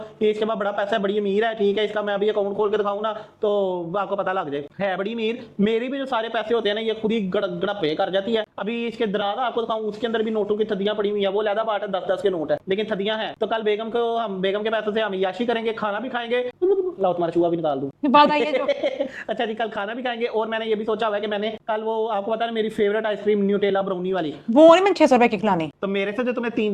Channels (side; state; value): both; identical; correlation 1.00